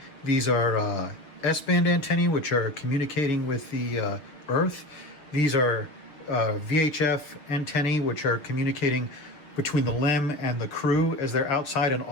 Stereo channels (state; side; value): late; right; 6.9 ms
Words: These are S-band antennae, which are communicating with the Earth. These are VHF antennae, which are communicating between the LEM and the crew as they're outside, and